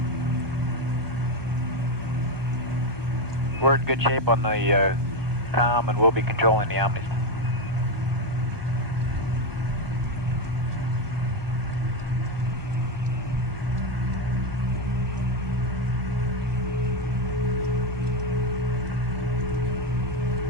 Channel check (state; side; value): late; left; 1.2 ms